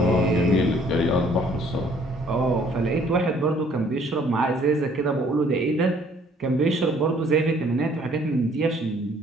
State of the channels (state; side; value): normal; both; correlation 0.60